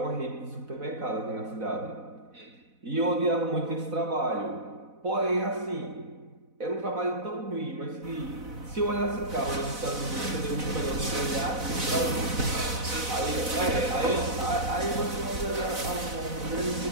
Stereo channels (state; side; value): late; left; 4.0 ms